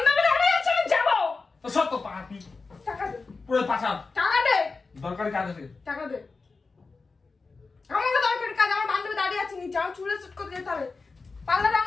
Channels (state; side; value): quieter; right; 4.2 dB